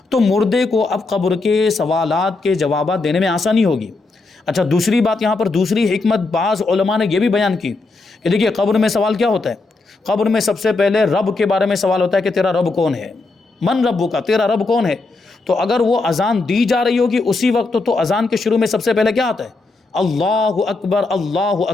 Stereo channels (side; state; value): right; quieter; 3.6 dB